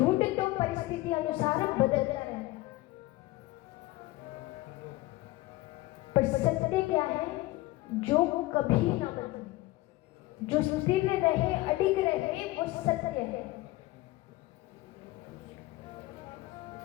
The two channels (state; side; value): quieter; right; 18.6 dB